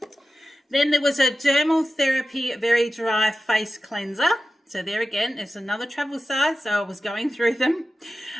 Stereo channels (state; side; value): normal; both; correlation 0.93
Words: Then there was a Dermal Therapy Very Dry Face Cleanser. So there again, it's another travel size, so I was going through them.